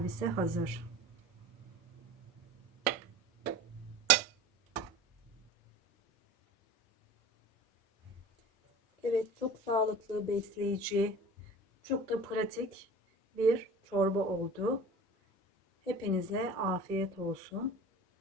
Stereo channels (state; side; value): normal; both; correlation 0.38